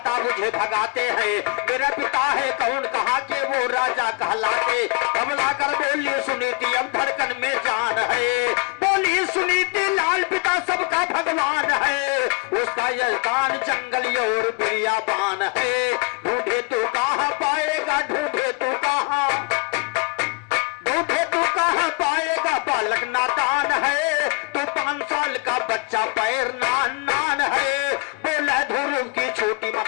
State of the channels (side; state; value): right; quieter; 31.1 dB